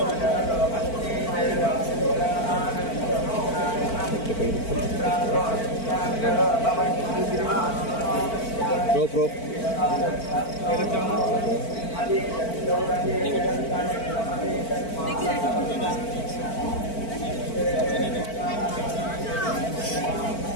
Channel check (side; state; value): right; late; 4.5 ms